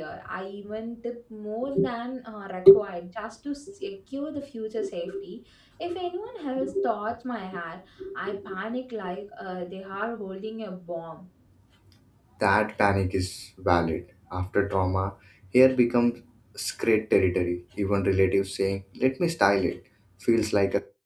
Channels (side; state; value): both; identical; correlation 1.00